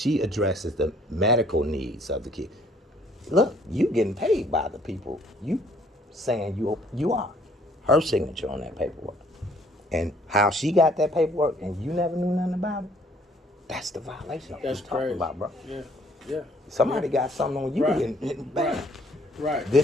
addresses the medical needs of the kid. Look, you getting paid by the people. You saying you are. Her signature on that paperwork. And how she got that paperwork and you never knew nothing about it, that's the violation I'm That's talking crazy. about, bro. Yeah. Somebody got something on you Right. and bam. Right.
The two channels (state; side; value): normal; both; correlation 0.62